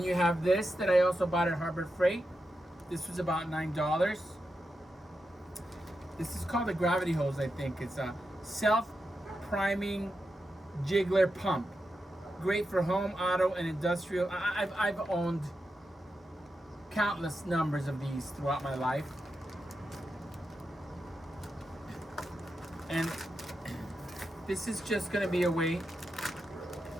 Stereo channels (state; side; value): normal; both; correlation 0.88